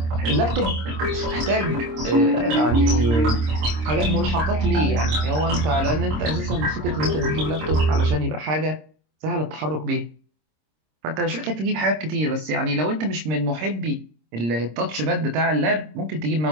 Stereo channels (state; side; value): late; left; 26 ms